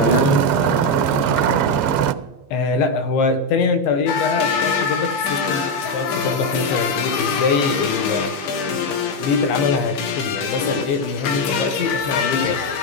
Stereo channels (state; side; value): late; right; 15 ms